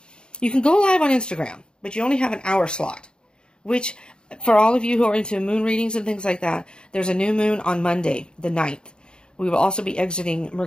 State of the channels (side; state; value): right; late; 0.049 ms